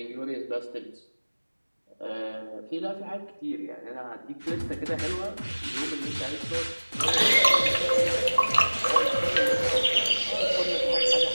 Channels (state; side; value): inverted; both; correlation -1.00